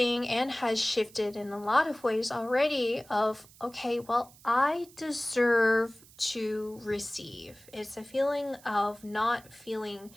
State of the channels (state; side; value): noise; right; hiss, 24 dB below the sound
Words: and has shifted in a lot of ways already, of, okay, well, I deserve to receive. It's a feeling of not feeling